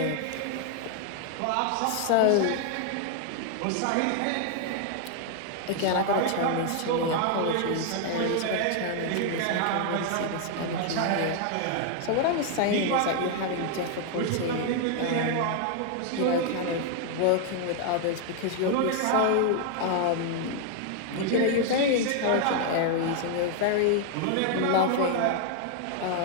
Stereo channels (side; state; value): both; different; correlation 0.00